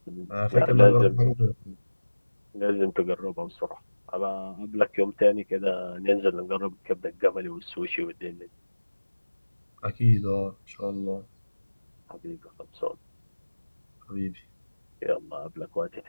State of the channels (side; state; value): both; inverted; correlation -1.00